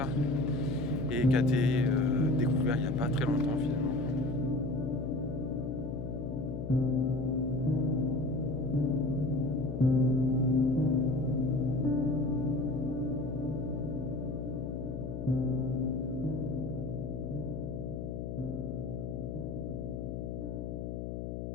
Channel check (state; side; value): noise; left; hum, 5 dB below the sound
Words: et qui a été découvert il n'y a pas très longtemps finalement.